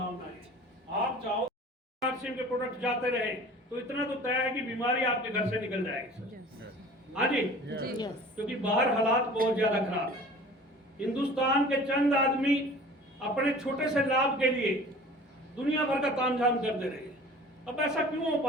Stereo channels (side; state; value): both; normal; correlation 0.44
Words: है। आप चाहो आरसीएम के प्रोडक्ट जाते रहे तो इतना तो तय है कि बीमारी आपके घर से निकल जाएगी सर। हाँ जी, क्योंकि बाहर हालात बहुत ज्यादा खराब है। हिंदुस्तान के चंद आदमी अपने छोटे से लाभ के लिए दुनिया भर का तामझाम कर दे रहे हैं। अब ऐसा क्यों हो